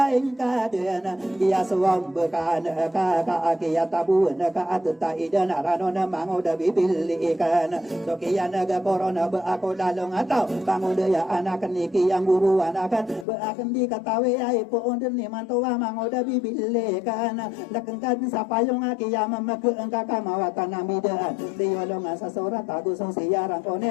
kadena iya suwam bekan kaka tabu ka atutaidan arano na mangoda bibili ikan so kiya nagakoron ba ako lalong ataw pangundaya anak niki yang guru anakan ba akan dikatawi ay puundin ni mantuwa mangoda bibili ikan lakengkan sa payong akiya mamageng kakamawatan namidaan diolong sa surat gusto siyarang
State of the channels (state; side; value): drops out; right; at 13.2 s